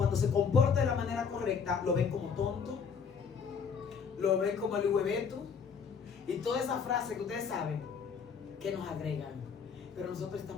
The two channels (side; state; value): right; quieter; 6.3 dB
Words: se comporta de la manera correcta, lo ven como tonto, lo ven como el hueveto y toda esa frase que ustedes saben que nos agregan. Pero nosotros